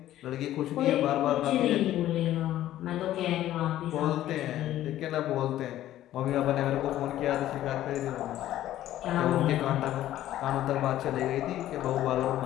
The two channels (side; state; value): right; quieter; 13.3 dB